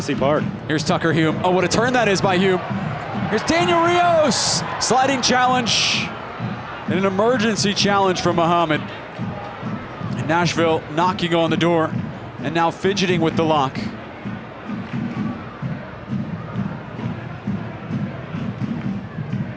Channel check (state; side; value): identical; both; correlation 1.00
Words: Park. Here's Tucker Hume. Oh, what a turn that is by Hume. Here's Daniel Rios. Sliding challenge. And an emergency challenge from Muhammad. And Nashville knocking on the door and now fidgeting with the lock.